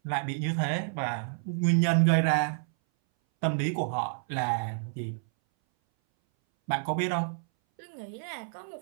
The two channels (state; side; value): silent; left; 58 dB below the other